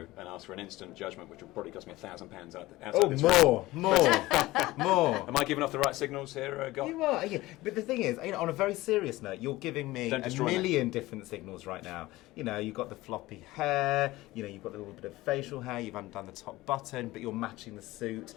and ask for an instant judgment, which will probably cost me £1,000 outside this room. More. Am I giving off the right signals here, Gok? You are, yeah. But the thing is, on a very serious note, you're giving me a million different signals right now. You've got the floppy hair, you've got a little bit of facial hair, you've undone the top button, but you're matching the suit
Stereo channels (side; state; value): right; quieter; 18.5 dB